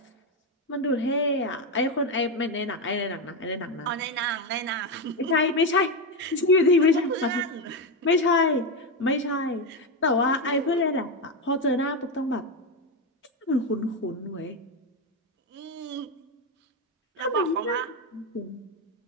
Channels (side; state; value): both; normal; correlation 0.10